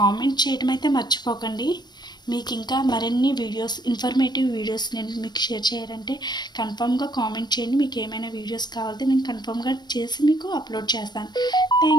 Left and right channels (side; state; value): right; late; 0.21 ms